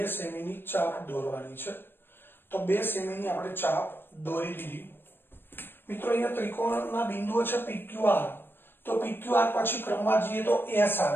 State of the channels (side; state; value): right; late; 0.10 ms